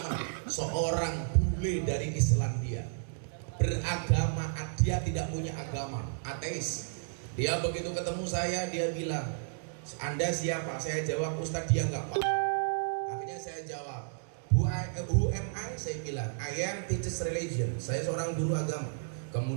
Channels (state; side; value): silent; left; digital silence